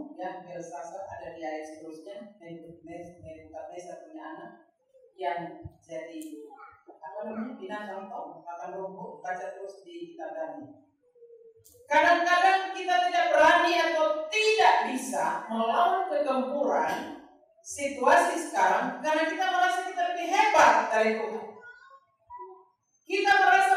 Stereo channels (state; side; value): identical; both; correlation 1.00